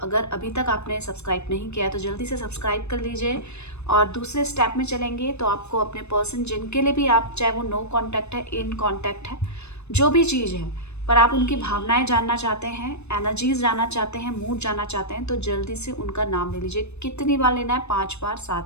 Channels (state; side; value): late; right; 0.81 ms